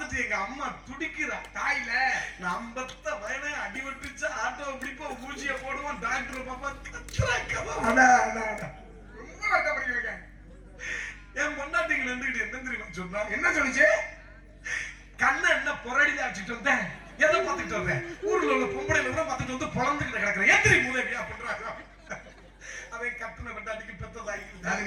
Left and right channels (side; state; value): both; identical; correlation 1.00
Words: எங்க அம்மா துடிக்கிறா. தாயில நான் 50 வயனே அடி விட்டுச்சா ஆட்டோ பிடிப்போம் ஊசிய போடுவோம் டாக்டர் பாப்பா கத்துறாங்க. ரொம்ப வருத்தப்படுறீங்க. என் பொண்டாட்டிங்க நின்றுட்டு என்ன தெரியுமா சொன்னா? என்ன சொல்லுச்சு? கண்ணை என்ன பொறடில அடிச்சுட்டு வந்தேன். எதை பார்த்துட்டு வந்தேன்? ஊர்ல உள்ள பொம்பளைல கூட பார்த்துட்டு வந்து பொழந்துக்கிட்டு கிடக்குறேன். எத்திரி மூதேவியா பண்றாங்க. அதை கட்டின பெண்டாட்டிக்கு பெத்த